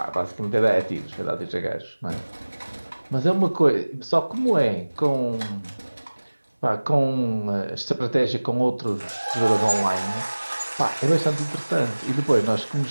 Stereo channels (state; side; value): inverted; both; correlation -1.00